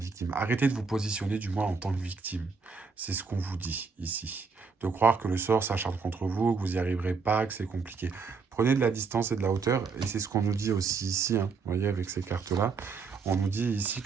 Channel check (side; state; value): left; quieter; 5.0 dB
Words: Arrêtez de vous positionner du moins en tant que victime. C'est ce qu'on vous dit ici. De croire que le sort s'acharne contre vous, que vous n'y arriverez pas, que c'est compliqué. Prenez de la distance et de la hauteur, et c'est ce qu'on nous dit aussi ici, hein, vous voyez, avec ces cartes-là. On nous dit ici